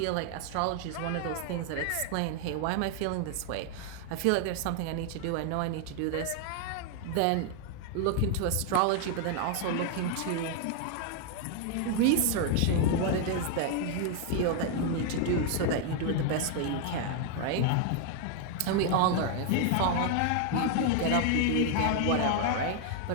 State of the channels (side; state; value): both; different; correlation 0.00